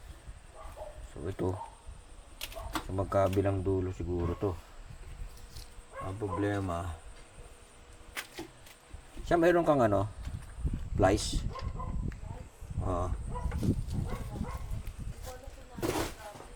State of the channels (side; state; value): both; identical; correlation 1.00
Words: Ito sa magkabilang dulo siguro to. Ang problema siya, mayroon kang flies.